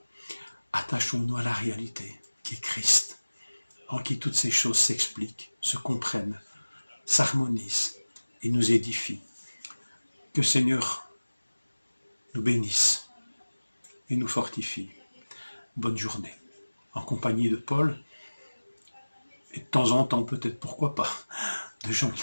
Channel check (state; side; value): inverted; both; correlation -1.00